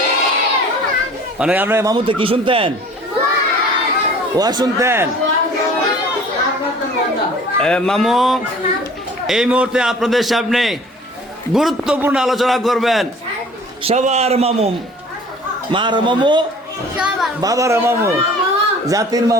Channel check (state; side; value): normal; both; correlation 0.48